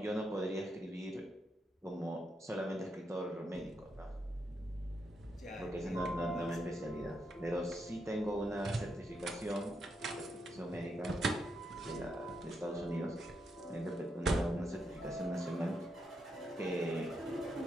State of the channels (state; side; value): normal; both; correlation 0.81